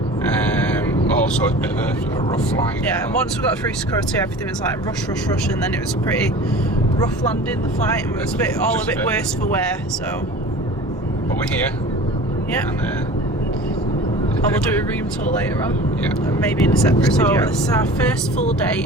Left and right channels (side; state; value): both; normal; correlation 0.40